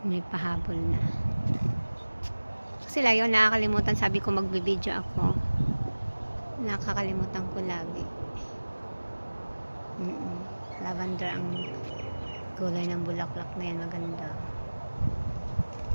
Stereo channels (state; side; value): inverted; both; correlation -1.00